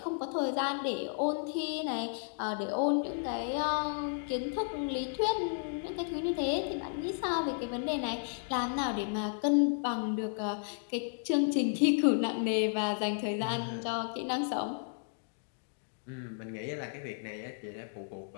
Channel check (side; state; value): right; silent; digital silence